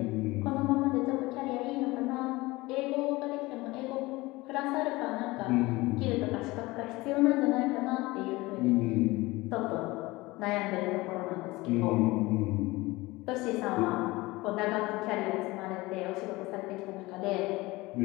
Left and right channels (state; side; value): quieter; right; 21.1 dB